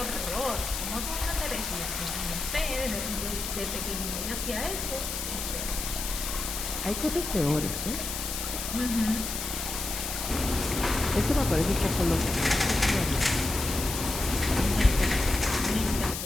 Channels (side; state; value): left; noise; hiss, 5 dB below the sound